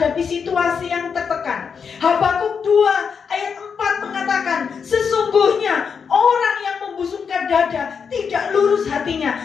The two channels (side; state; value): right; quieter; 6.3 dB